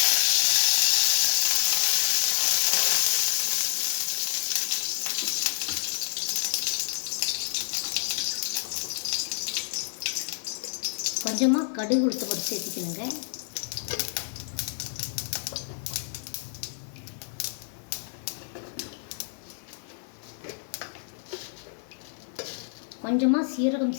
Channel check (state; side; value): silent; right; 59 dB below the other